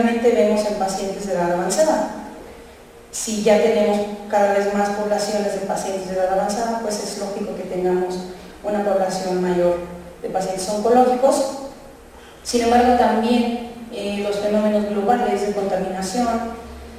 vemos en pacientes de edad avanzada. Si ya tenemos cada vez más poblaciones de pacientes de edad avanzada, pues es lógico que tengamos una población mayor de pacientes oncológicos. Sin embargo, también los fenómenos globales de contaminación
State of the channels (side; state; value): both; identical; correlation 1.00